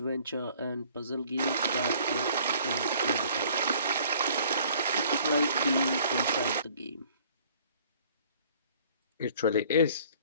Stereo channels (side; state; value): both; inverted; correlation -0.55